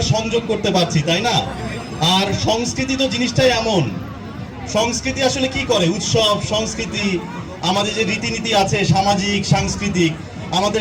সংযোগ করতে পারছি, তাই না? আর সংস্কৃতি তো জিনিসটাই এমন, সংস্কৃতি আসলে কি করে, উৎসব সংস্কৃতি আমাদের যে রীতিনীতি আছে সামাজিক সাংস্কৃতিক,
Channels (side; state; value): both; identical; correlation 1.00